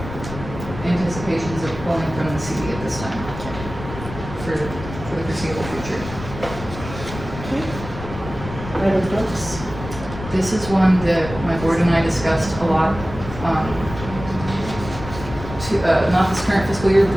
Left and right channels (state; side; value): noise; left; rumble, 11 dB below the sound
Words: anticipations of pulling from the CD at this time for the foreseeable future. Okay. Private books. This is one that my board and I discussed a lot, not this current fiscal year, but